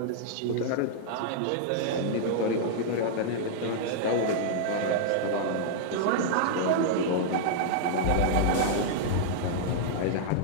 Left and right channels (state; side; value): different; both; correlation -0.02